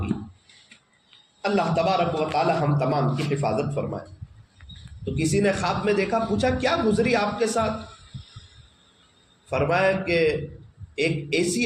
اللہ تبارک و تعالی ہم تمام کی حفاظت فرمائے۔ تو کسی نے خواب میں دیکھا، پوچھا کیا گزری آپ کے ساتھ؟ فرمایا کہ ایک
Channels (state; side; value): identical; both; correlation 1.00